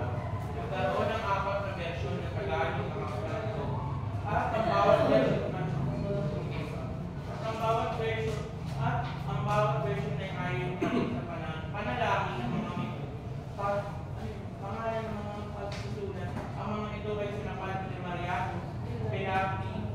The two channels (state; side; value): identical; both; correlation 1.00